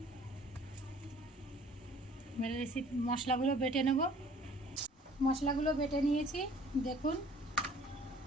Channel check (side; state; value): both; normal; correlation 0.53